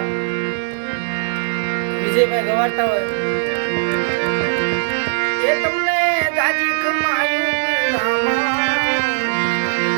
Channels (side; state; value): left; silent; 67 dB below the other